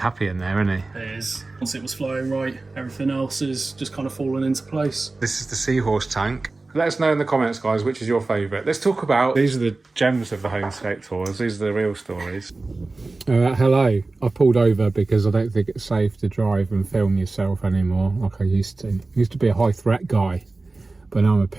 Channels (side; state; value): left; quieter; 3.4 dB